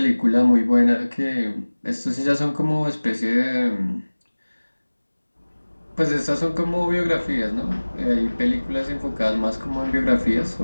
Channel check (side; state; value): both; inverted; correlation -1.00